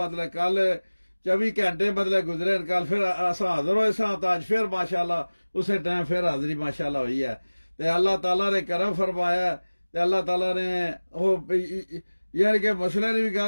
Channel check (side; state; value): both; inverted; correlation -1.00